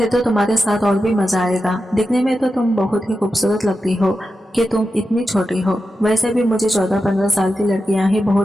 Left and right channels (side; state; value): both; normal; correlation 0.90